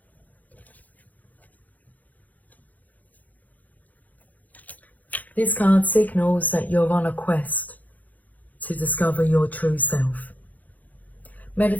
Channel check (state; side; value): late; right; 0.079 ms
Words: This card signals that you're on a quest to discover your true self.